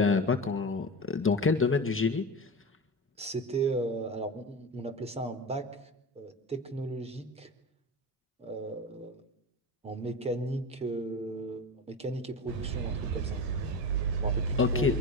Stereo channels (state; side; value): normal; both; correlation 0.26